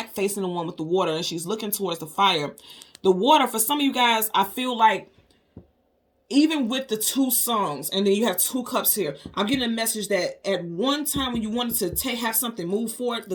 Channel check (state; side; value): identical; both; correlation 1.00